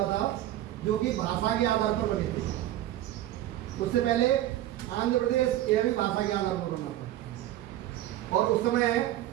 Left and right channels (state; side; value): quieter; left; 13.9 dB